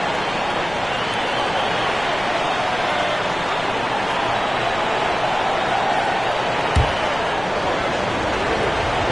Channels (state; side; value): noise; left; rumble, 16 dB below the sound